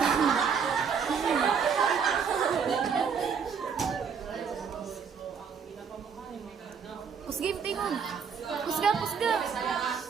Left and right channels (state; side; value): quieter; left; 6.5 dB